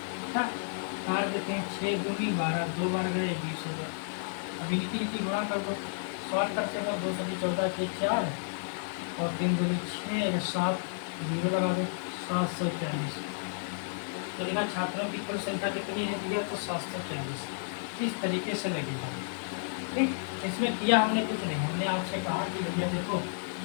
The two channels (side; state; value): right; silent; digital silence